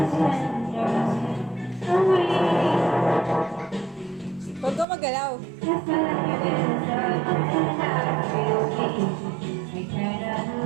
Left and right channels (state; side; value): drops out; left; at 4.9 s